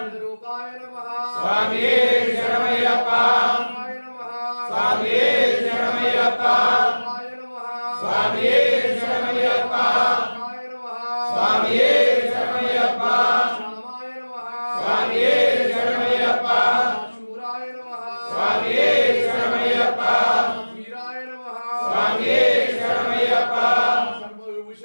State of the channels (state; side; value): inverted; both; correlation -1.00